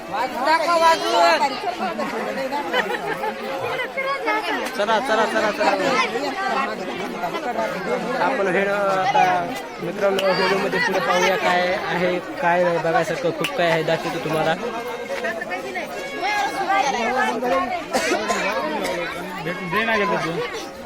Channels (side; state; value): both; identical; correlation 1.00